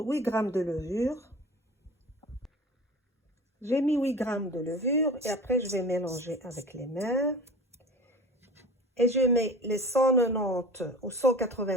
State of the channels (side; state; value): both; normal; correlation 0.38